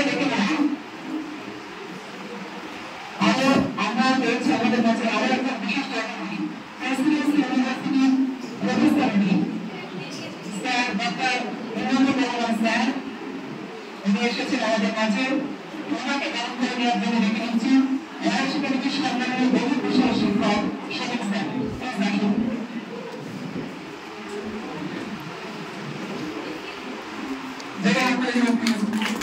দেখে নেব আমরা পেয়েছি আমাদের কাছে আরো একটা বিশিষ্ট অতিথি, প্রেসিডেন্সি ইউনিভার্সিটির professor sir doctor Imamur Rahman sir. উনি এসেছেন আমাদের কাছে, ওনাকে গ্রহণ করে নেওয়ার জন্য ডেকে নিচ্ছি ওয়াইশ একাডেমির সম্মানীয় বহু বিশাল শিক্ষক শফিক স্যার, প্লিজ আসুন।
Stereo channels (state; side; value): identical; both; correlation 1.00